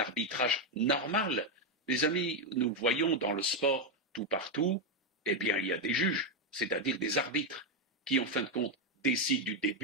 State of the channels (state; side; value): normal; both; correlation 0.05